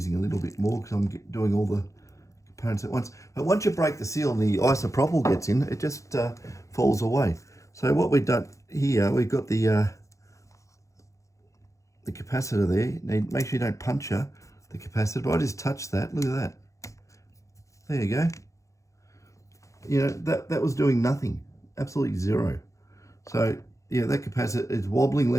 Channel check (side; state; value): right; late; 0.15 ms